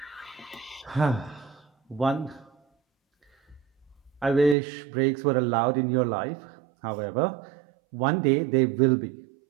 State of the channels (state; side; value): drops out; left; at 4.5 s